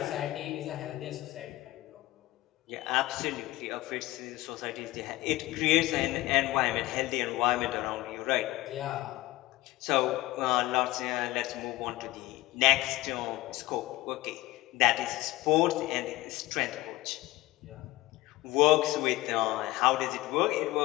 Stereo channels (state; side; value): quieter; right; 18.5 dB